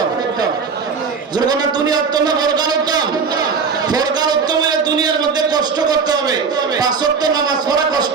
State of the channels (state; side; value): quieter; left; 5.5 dB